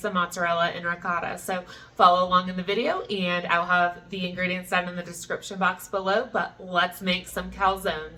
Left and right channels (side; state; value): both; identical; correlation 1.00